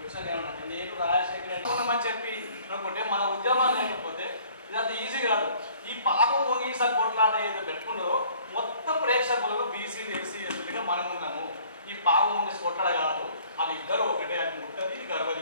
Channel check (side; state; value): both; inverted; correlation -0.56